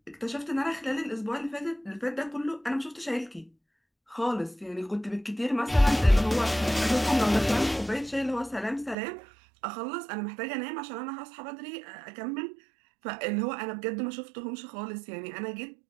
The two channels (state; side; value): drops out; left; at 9.0 s